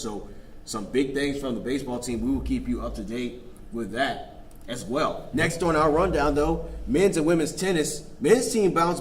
some big things from the baseball team. We will keep you up to date with that as well. Next on our rundown, though, men's and women's tennis. Men's team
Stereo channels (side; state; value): both; identical; correlation 1.00